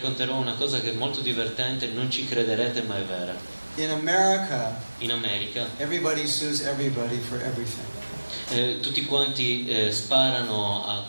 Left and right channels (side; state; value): both; inverted; correlation -1.00